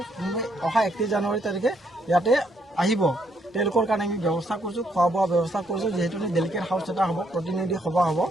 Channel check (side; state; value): both; normal; correlation 0.72